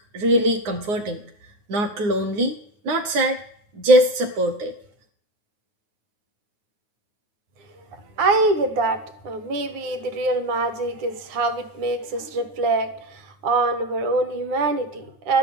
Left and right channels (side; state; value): left; late; 9.5 ms